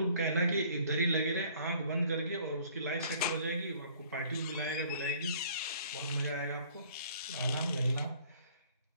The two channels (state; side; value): inverted; both; correlation -0.56